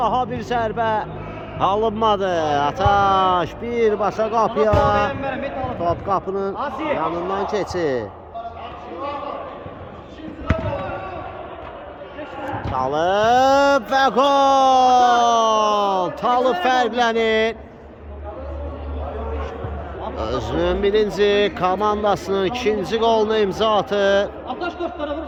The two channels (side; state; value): both; identical; correlation 1.00